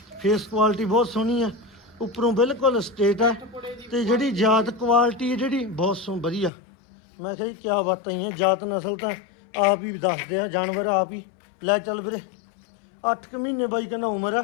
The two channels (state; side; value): drops out; right; at 6.5 s